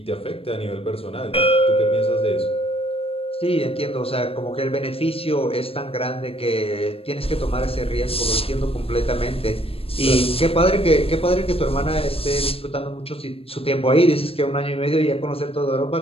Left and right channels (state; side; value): late; right; 0.28 ms